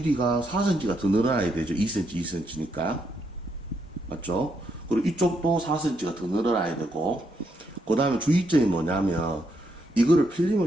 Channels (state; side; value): normal; both; correlation 0.77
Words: 4cm가 더 늘어나야 되죠. 2cm니까. 맞죠? 그리고 이쪽도 4cm가 더 늘어나야 되고, 그 다음에 주의점이 뭐냐면, 이거를